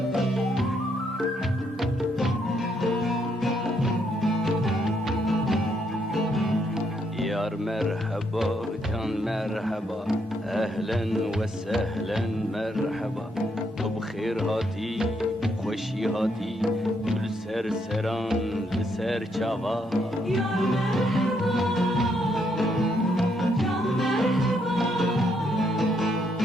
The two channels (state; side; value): normal; both; correlation 0.74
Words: مرحبا جان مرحبا اهلا و سهلا مرحبا تو بخیر هاتی خوشی هاتی گل سر سران لسر چاوا یا مرحبا جان مرحبا